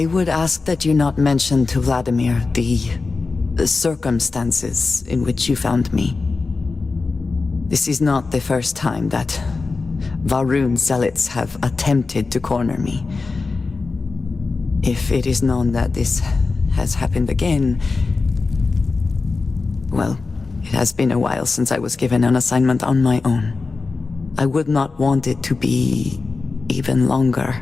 would ask that you not mention to Vladimir the circumstances in which you found me. This is not the first time that Va'ruun zealots have attempted to corner me. If it is known that this has happened again, well, it has been a while since I was given an assignment on my own. I would not want it to be even longer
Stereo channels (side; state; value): right; quieter; 4.0 dB